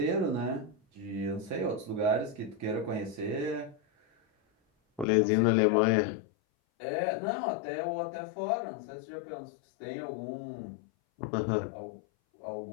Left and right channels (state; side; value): drops out; right; at 5.1 s